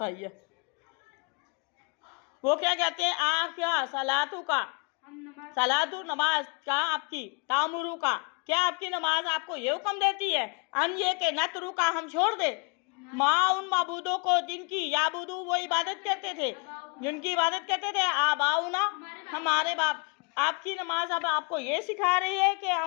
आई है। वो क्या कहते हैं? क्या सलातु का, सलातु नमाज का, आपकी तामुरू का, क्या आपकी नमाज आपको ये हुक्म देती है अन ये के नतरू का, हम छोड़ दे, माँ उन माबूदों को जिनकी, याबुदू, वो इबादत करते थे, जिनकी इबादत करते थे, आबाउना, हमारे बाप। आपकी नमाज अब आपको ये सिखा रही है कि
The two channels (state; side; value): quieter; right; 33.1 dB